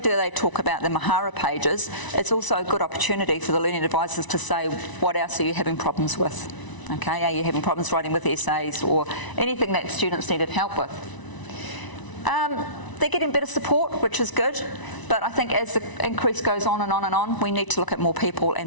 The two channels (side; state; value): right; late; 1.0 ms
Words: they talk about the Mahara pages, it's also a good opportunity for the learning advisors to say, what else are you having problems with? Okay, are you having problems writing with essays or anything that students needed help with? They're getting better support, which is good, but I think as the increase goes on and on and on, we need to look at more people